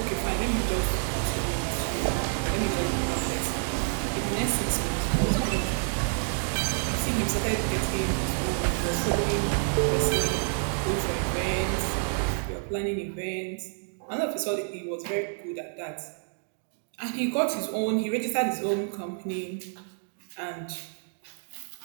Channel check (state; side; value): silent; left; 55 dB below the other